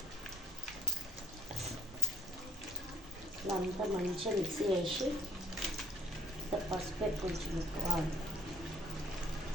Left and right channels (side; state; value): both; normal; correlation 0.51